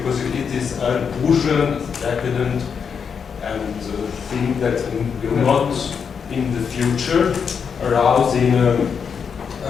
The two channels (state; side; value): quieter; right; 6.5 dB